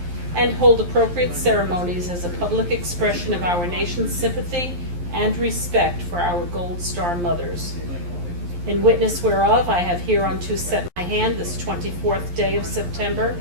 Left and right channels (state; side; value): late; left; 11 ms